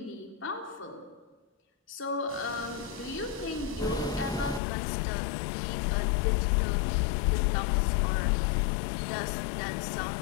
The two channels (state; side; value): drops out; right; at 4.6 s